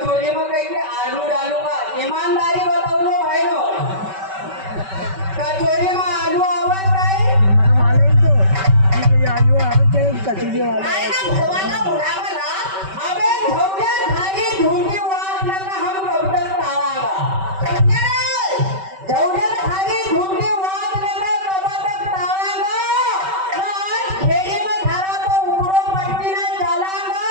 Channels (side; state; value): left; late; 5.2 ms